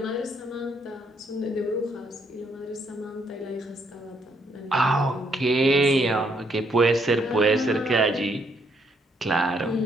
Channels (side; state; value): both; normal; correlation 0.72